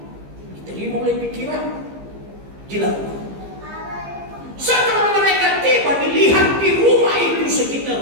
diterima oleh pikiran, dilakukan. Setelah mereka tiba, dilihat di rumah itu, sekitar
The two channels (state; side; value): late; left; 15 ms